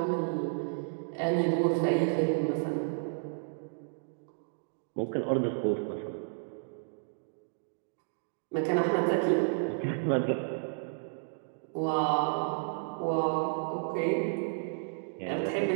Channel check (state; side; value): silent; left; digital silence